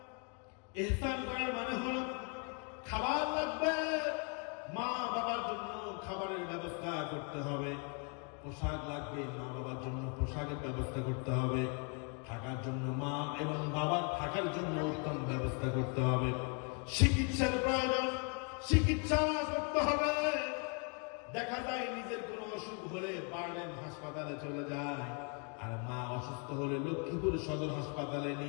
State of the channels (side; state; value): right; quieter; 37.6 dB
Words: ইহসান করার মানে হলো খাবার লাগবে, মা রাখতে হবে, পোশাক লাগবে, মা বাবার জন্য পোশাকের ব্যবস্থা করতে হবে, থাকার জন্য মা এবং বাবার থাকার জন্য উত্তম ব্যবস্থা করতে হবে, চিকিৎসার প্রয়োজন, চিকিৎসা করতে হবে। দেখা যায় নিজের কোনো অসুখ হলে বার্ডেন হাসপাতালে চলে যায়, আর মা অসুস্থ হলে লক্ষ্মীপুর সদর হাসপাতালে